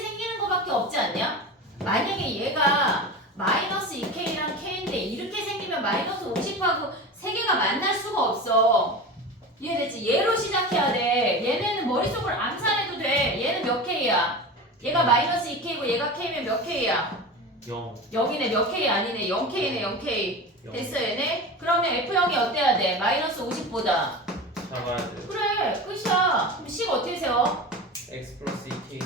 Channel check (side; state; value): both; normal; correlation 0.29